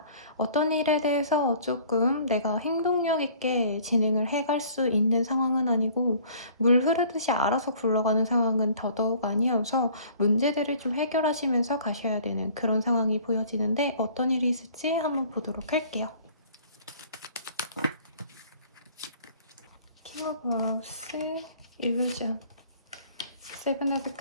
어떤 일에 대해서 조금 내가 행동력 있게 진행을 해갈 수 있는 상황은 아니고, 물 흐르듯이 알아서 굴러가는 상황은 더더욱 아니어서 문제들을 좀 해결하시면서 가셔야 되는 그런 상황이 보여지는데, 어떤 일이 있을지 한번 보도록 할게요. 킹 오브 와우스, 일루전, 세븐 오브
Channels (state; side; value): inverted; both; correlation -0.52